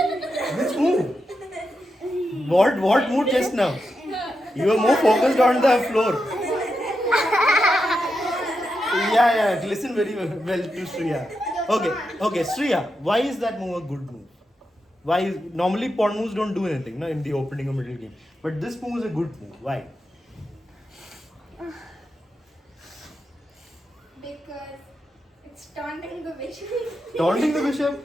Which move? What move just now? You were more focused on the floor. Yeah. Listen very well to Shriya. Okay, Shriya. Why is that move a good move? Why? Normally pawn moves don't do anything, no, in the opening or middle game. But this move is a good move. Why? Because it's taunting the bishop. Taunting the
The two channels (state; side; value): normal; both; correlation 0.87